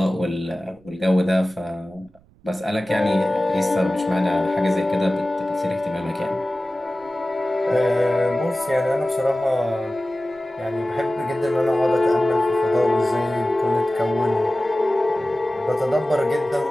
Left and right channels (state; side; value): noise; right; rumble, 29 dB below the sound